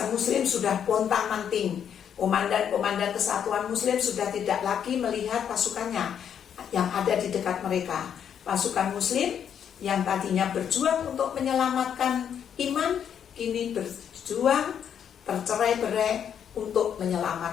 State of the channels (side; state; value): right; quieter; 8.5 dB